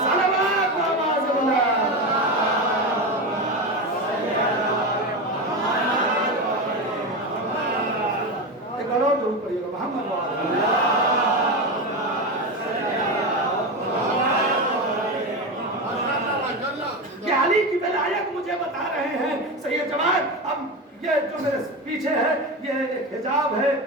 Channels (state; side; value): normal; both; correlation 0.19